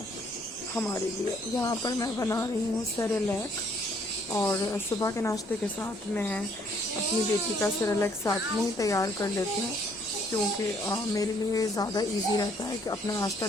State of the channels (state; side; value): normal; both; correlation 0.65